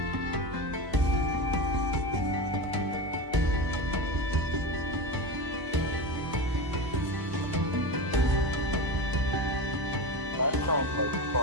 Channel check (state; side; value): late; left; 1.0 ms